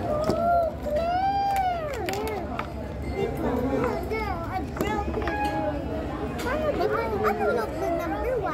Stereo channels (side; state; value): both; identical; correlation 1.00